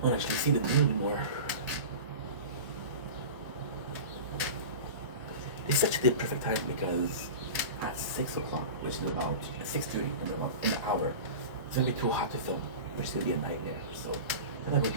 don't actually see the moon anymore. It's such a perfect time because at 6 o'clock, which is about 6:30 in an hour, it's gonna be too hot to film, which is gonna be a nightmare. So I think we're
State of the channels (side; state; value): both; inverted; correlation -0.31